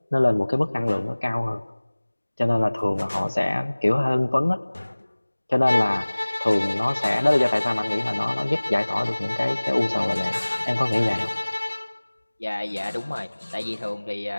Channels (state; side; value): inverted; both; correlation -1.00